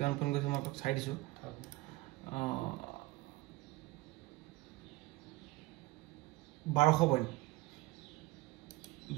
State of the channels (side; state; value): left; quieter; 19.5 dB